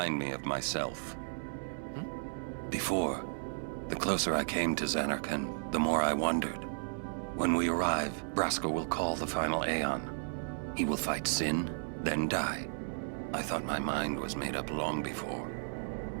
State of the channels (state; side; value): silent; left; 55 dB below the other